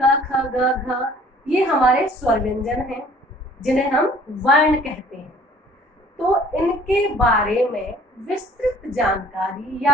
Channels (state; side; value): normal; both; correlation 0.53